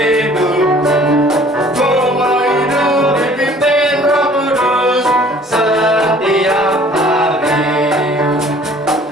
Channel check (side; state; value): both; normal; correlation 0.53